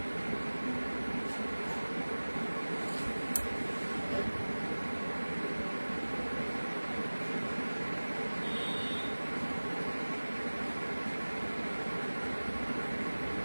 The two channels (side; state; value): both; inverted; correlation -1.00